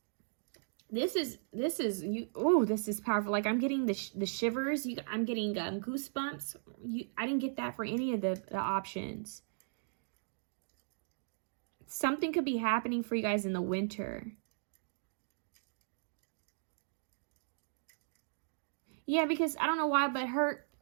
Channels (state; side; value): silent; left; digital silence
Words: This is you. Oh, this is powerful. Like I'm getting the shivers. I'm getting goosebumps. I didn't get that for any of the options. Something could be happening for you guys in the winter. Yeah, because I don't know why, but